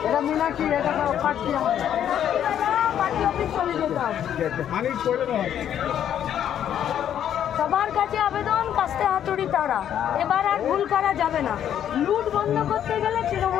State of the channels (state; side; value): quieter; right; 9.9 dB